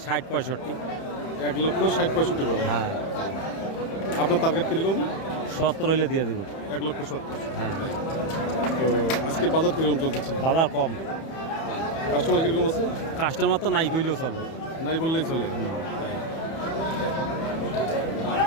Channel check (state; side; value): late; right; 31 ms